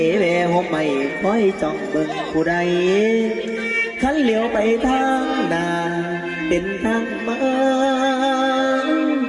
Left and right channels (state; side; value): identical; both; correlation 1.00